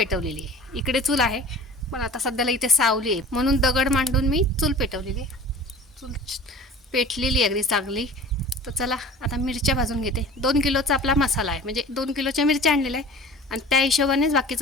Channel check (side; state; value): both; normal; correlation 0.41